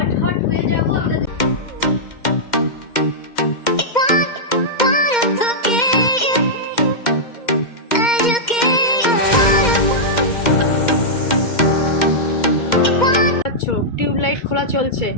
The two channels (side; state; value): right; late; 2.1 ms